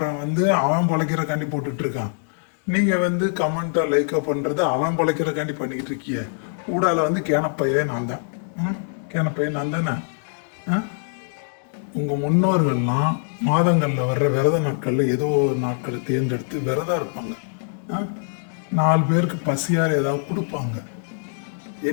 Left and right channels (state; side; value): silent; right; digital silence